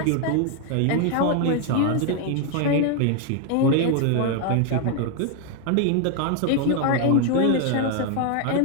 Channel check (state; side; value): different; both; correlation 0.01